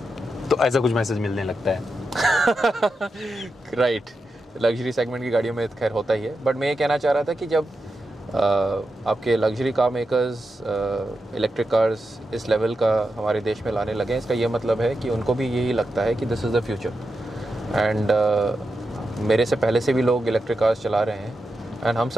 तो ऐसा कुछ मैसेज मिलने लगता है। राइट। लग्जरी सेगमेंट की गाड़ियों में खैर होता ही है, बट मैं ये कहना चाह रहा था कि जब आपके luxury car makers electric cars इस लेवल का हमारे देश में लाने लगे, इसका ये मतलब है कि उनको भी यही लगता है कि this is the future. And मेरे से पहले से भी लोग इलेक्ट्रिक कार्स चला रहे हैं, एंड हम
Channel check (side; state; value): both; normal; correlation 0.88